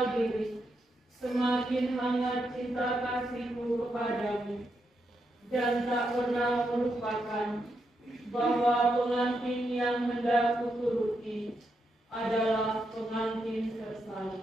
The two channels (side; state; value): both; normal; correlation 0.82